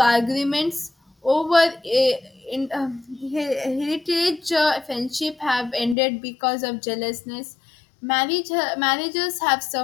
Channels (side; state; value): right; drops out; at 6.0 s